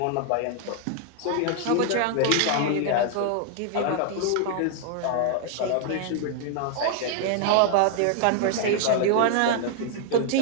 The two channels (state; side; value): different; both; correlation 0.00